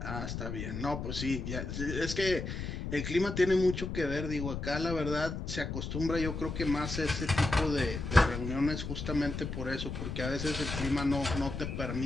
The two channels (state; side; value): noise; left; rumble, 5 dB below the sound